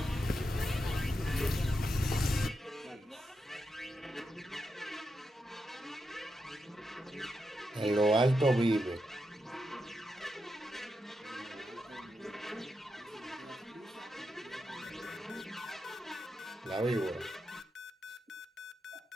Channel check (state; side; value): normal; both; correlation 0.86